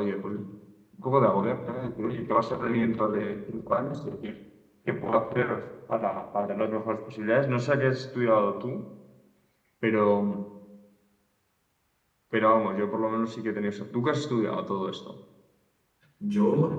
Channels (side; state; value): both; identical; correlation 1.00